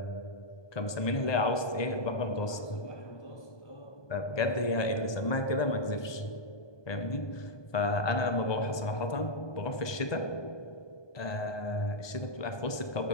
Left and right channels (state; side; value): late; right; 1.2 ms